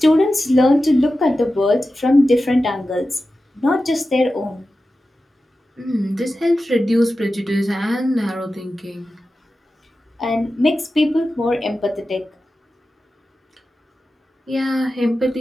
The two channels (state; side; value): normal; both; correlation 0.93